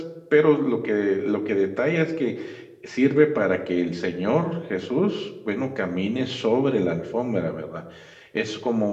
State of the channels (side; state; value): both; identical; correlation 1.00